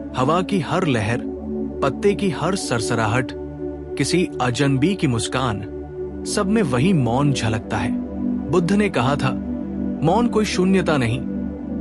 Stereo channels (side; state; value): both; identical; correlation 1.00